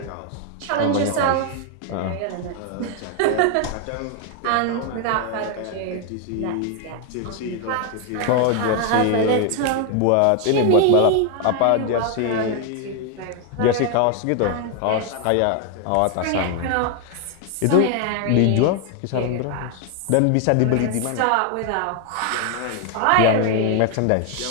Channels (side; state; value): both; different; correlation 0.00